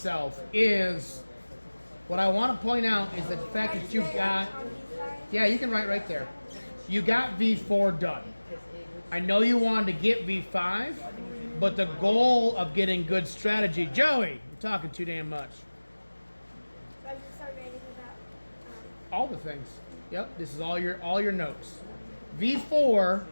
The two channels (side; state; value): both; inverted; correlation -1.00